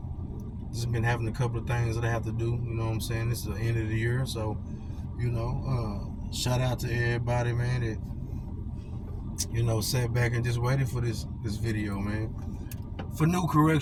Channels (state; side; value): identical; both; correlation 1.00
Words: Just been having a couple of things that I have to do, you know what I'm saying? It's the end of the year, so, shout out to everybody, man, that, sat back and just waited for this video, man. For new